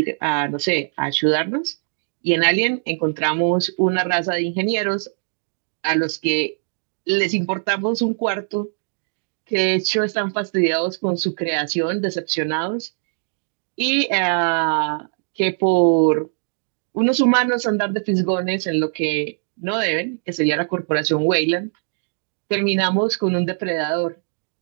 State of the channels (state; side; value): silent; left; digital silence